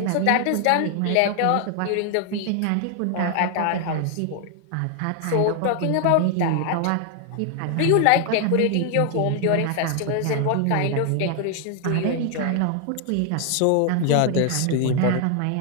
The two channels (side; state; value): both; different; correlation 0.00